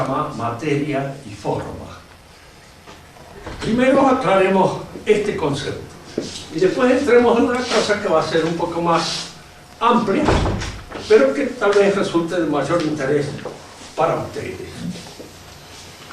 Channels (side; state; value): both; identical; correlation 1.00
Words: materia y forma. Primero aclaremos este concepto y después entremos en una cosa que va a ser un poco más amplia, pero que tal vez resulte de mayor interés para ustedes.